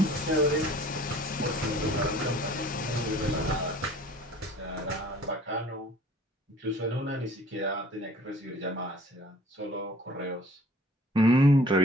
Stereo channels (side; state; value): both; normal; correlation 0.52